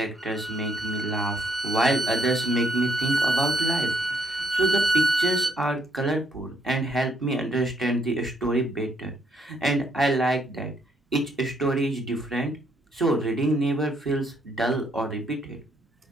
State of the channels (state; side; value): normal; both; correlation 0.71